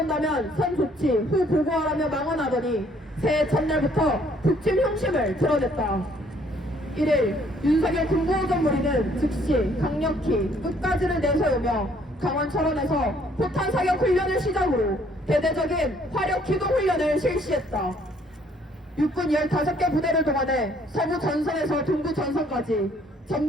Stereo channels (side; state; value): both; normal; correlation 0.63